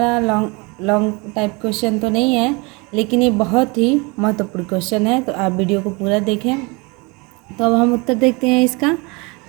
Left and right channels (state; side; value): quieter; left; 27.9 dB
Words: लॉन्ग टाइप क्वेश्चन तो नहीं है, लेकिन ये बहुत ही महत्वपूर्ण क्वेश्चन है, तो आप वीडियो को पूरा देखें। तो अब हम उत्तर देखते हैं इसका।